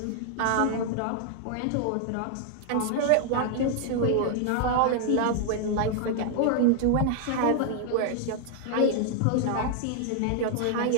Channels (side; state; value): both; different; correlation 0.00